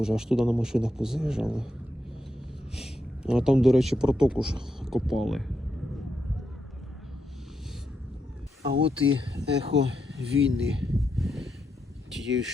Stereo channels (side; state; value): both; normal; correlation 0.82